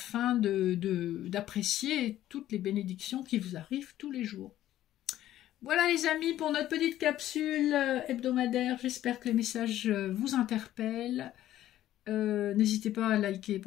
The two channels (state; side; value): quieter; right; 13.2 dB